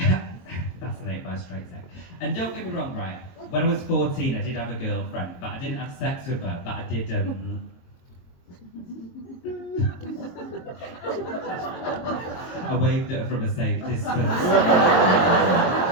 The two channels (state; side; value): late; right; 22 ms